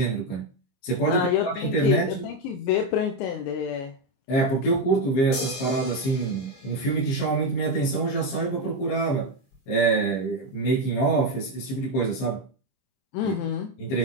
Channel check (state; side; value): late; right; 22 ms